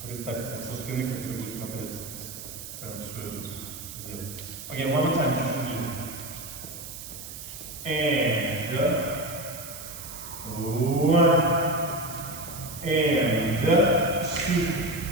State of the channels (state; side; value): noise; right; hiss, 11 dB below the sound